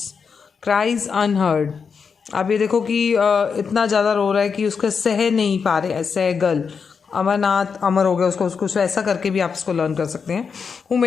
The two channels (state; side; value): quieter; right; 5.9 dB